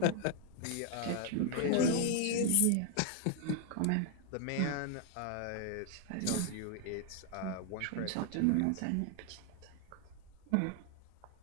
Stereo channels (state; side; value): different; both; correlation 0.00